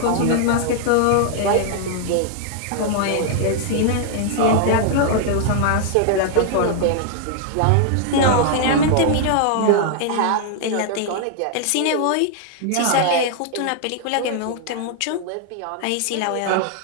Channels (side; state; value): both; different; correlation 0.00